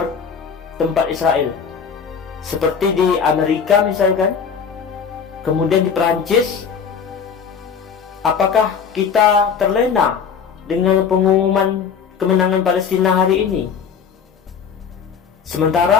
tempat Israel? Seperti di Amerika misalkan, kemudian di Perancis. Apakah kita terlena dengan pengumuman kemenangan Palestina hari ini?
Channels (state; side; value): quieter; right; 6.6 dB